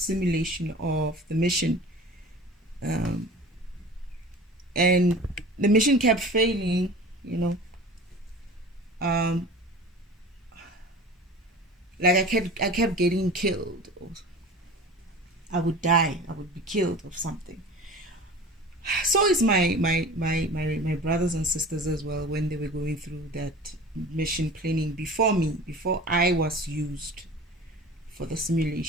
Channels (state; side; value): normal; both; correlation 0.39